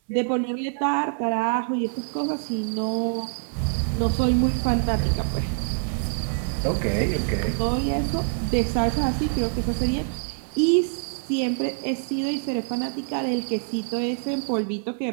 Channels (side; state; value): left; silent; 62 dB below the other